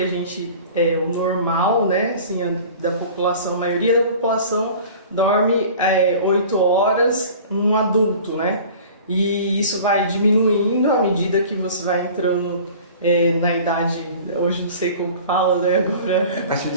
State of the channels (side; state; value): both; inverted; correlation -0.43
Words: gente, o normal, né, assim, da população, a maioria da população dorme 8 horas um adulto, né, e isso vai diminuindo à medida que você vai entrando na idade, hoje não sei como fala, né, agora... A partir